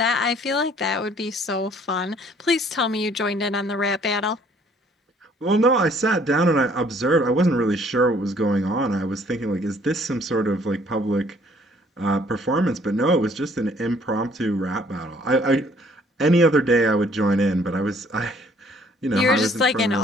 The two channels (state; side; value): normal; both; correlation 0.60